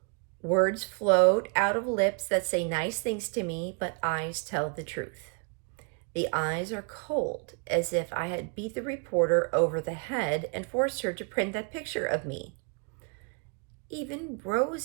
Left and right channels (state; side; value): quieter; left; 38.5 dB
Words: Words float out of lips that say nice things to me, but eyes tell the truth. The eyes are cold, as if I had beat the reporter over the head and forced her to print that picture of me. Even